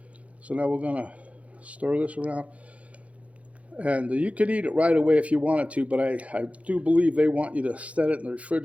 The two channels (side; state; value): left; late; 0.065 ms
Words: So now we're going to stir this around. And you could eat it right away if you wanted to, but I do believe they want you to set it in the